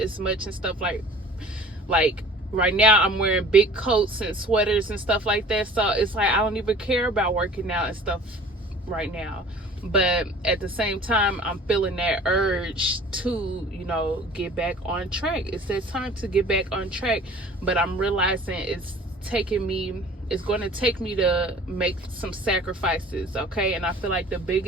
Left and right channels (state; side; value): normal; both; correlation 0.47